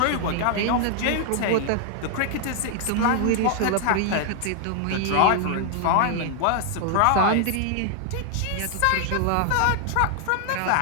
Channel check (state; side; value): different; both; correlation 0.00